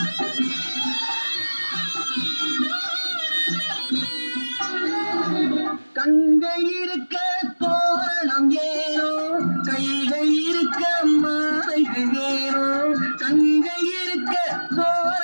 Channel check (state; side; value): inverted; both; correlation -1.00